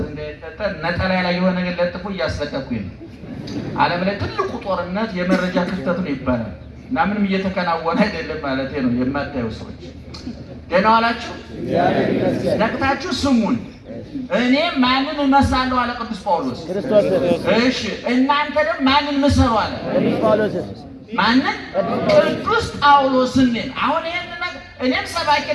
እንዳይፈጠር ነጠላ ላይ የሆነ ነገር ለጥፎ እያስለቀኩኝ ነው። ዓለም ላይ ትልቁ ጦርነት የመረጃ ክፍተት ነው ይባላል እና ምንም እየተከናወነ አይደለም ማለት ነው። የማታዩ ሰዎች ደህና ዋላችሁ? ነቅታችሁ ስሙን። እኔ ማንን እመስላለሁ አለ ቅዱስ ጳውሎስ። እሺ እናንተ ደግሞ ማንን ምሰሉ አለ ቅዱስ ጳውሎስ። ማንን? ቅዱስ ጳውሎስን። አሁን ይሄን ነገር እኔም ሰባኪ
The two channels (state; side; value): identical; both; correlation 1.00